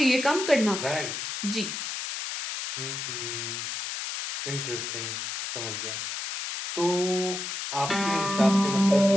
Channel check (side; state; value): left; noise; hiss, 5 dB below the sound